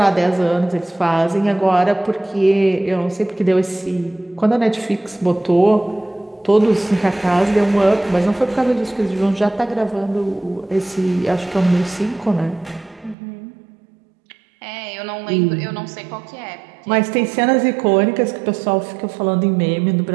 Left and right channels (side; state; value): left; drops out; at 13.2 s